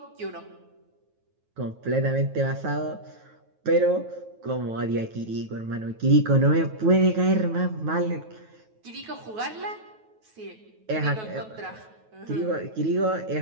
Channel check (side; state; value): left; late; 9.3 ms